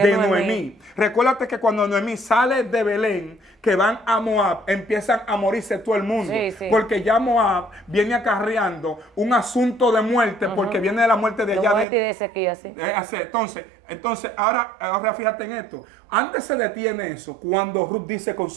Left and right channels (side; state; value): left; drops out; at 11.9 s